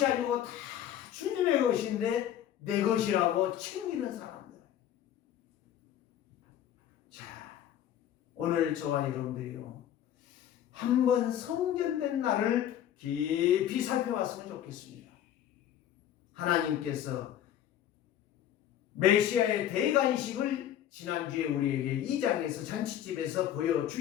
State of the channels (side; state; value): right; quieter; 11.0 dB